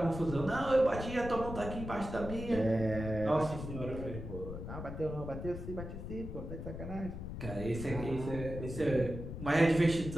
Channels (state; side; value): noise; left; rumble, 8 dB below the sound